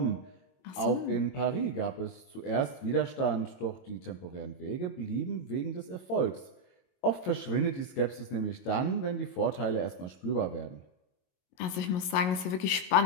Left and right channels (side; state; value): right; late; 22 ms